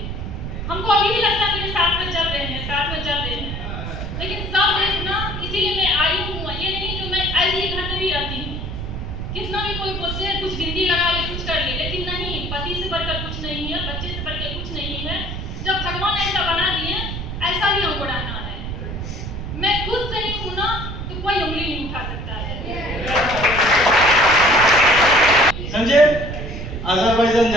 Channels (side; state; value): right; noise; rumble, 6 dB below the sound